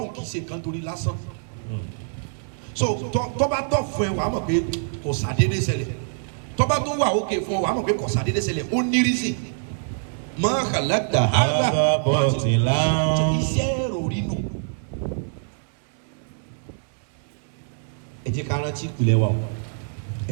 kì í ṣe nǹkan torí lásán so tọ́ba tọ́ fún ẹ wàá mọ̀ pé kò sàdédé ṣẹlẹ̀ tọ́ba tó wà òkè fún ọ wàá mọ̀ pé kò sàdédé ṣẹlẹ̀ ó ní rísì máa kàlákìtà hazabatilan iṣẹ́ ìròrí nù. ẹ jẹ́ ká rántí ìpìlẹ̀ wa o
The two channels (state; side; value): silent; left; 62 dB below the other